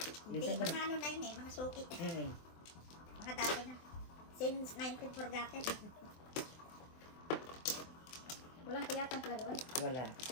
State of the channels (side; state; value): right; late; 24 ms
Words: Hindi, Minsan mga ano na yun eh, mga suki. Mm. Mga dati na. Since 19 forgotten. Walang kuyatan pala doon. Wala.